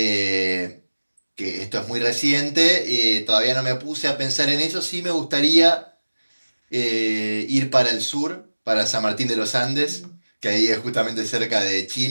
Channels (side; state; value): both; inverted; correlation -1.00